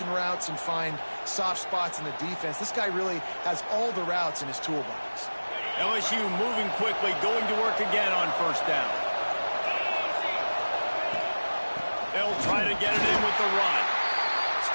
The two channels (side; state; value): both; inverted; correlation -1.00